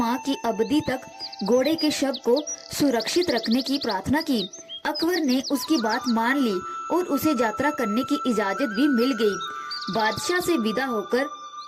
की अवधि तक घोड़े के शव को सुरक्षित रखने की प्रार्थना की। अकबर ने उसकी बात मान ली और उसे यात्रा करने की इजाजत भी मिल गई। बादशाह से विदा होकर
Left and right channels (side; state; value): both; identical; correlation 1.00